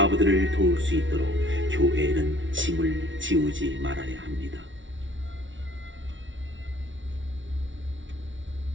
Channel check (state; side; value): late; left; 0.56 ms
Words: 도울 수 있도록 교회에는 짐을 지우지 말아야 합니다.